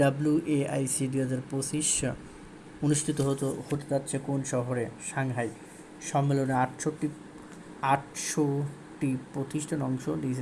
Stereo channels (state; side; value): identical; both; correlation 1.00